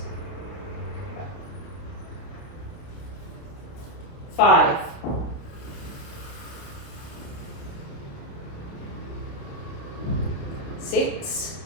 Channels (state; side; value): late; right; 29 ms